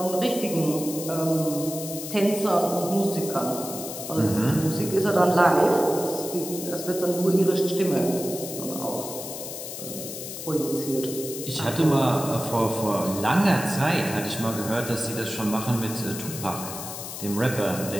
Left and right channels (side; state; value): left; noise; hiss, 9 dB below the sound